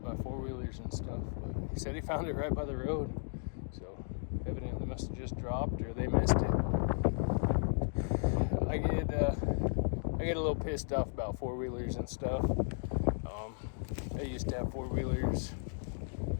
by 4-wheelers and stuff. But he said he found it right by the road, so evidently must have just dropped or they missed it. I get a little pissed off about 4-wheelers and stuff. I used to have 4-wheelers,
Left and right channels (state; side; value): silent; right; digital silence